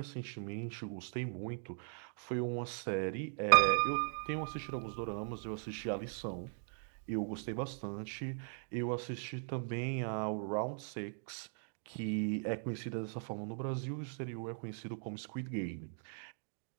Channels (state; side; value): silent; left; digital silence